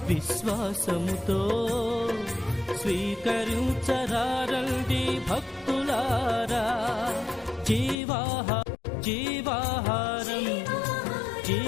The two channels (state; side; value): drops out; right; at 8.0 s